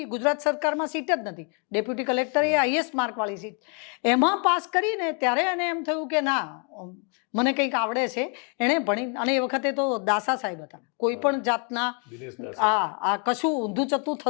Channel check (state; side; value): quieter; right; 37.8 dB